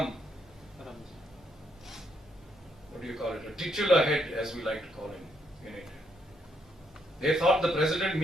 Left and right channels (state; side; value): normal; both; correlation 0.75